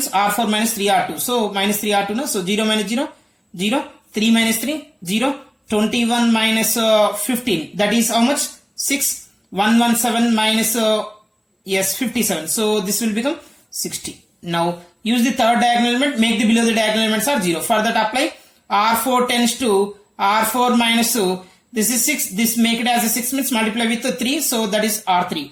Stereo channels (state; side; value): identical; both; correlation 1.00